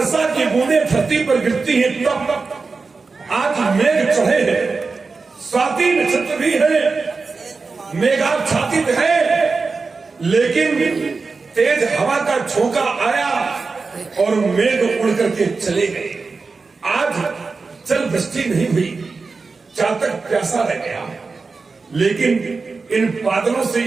की बूंदें धरती पर गिरती हैं तब आज मेघ चढ़े हैं, स्वाति नक्षत्र भी है, मेघाच्छादित है, लेकिन तेज हवा का झोंका आया और मेघ उड़ करके चले गए। आज जल वृष्टि नहीं हुई, चातक प्यासा रह गया, लेकिन इन बादलों से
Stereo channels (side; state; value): left; quieter; 4.3 dB